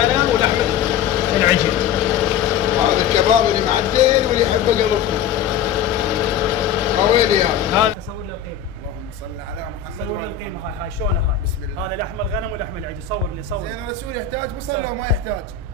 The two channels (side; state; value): right; quieter; 8.2 dB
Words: ولحم العجل. هذا الكباب اللي معدل واللي يحبه قلبكم. قوي يا هذا صور له القيمه. اللهم صل على محمد. صور له القيمه. هاي شلونها هاي. بسم الله. هذا لحم الغنم ولحم العجل. صور لي صور. زين الرسول يحتاج بصل لو ما يحتاج؟